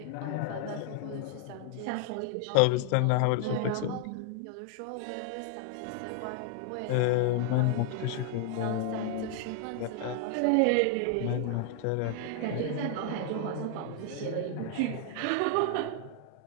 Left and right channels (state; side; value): different; both; correlation 0.00